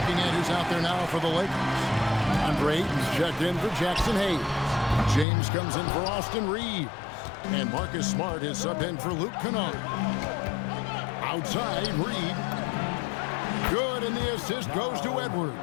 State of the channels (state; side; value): drops out; right; at 5.2 s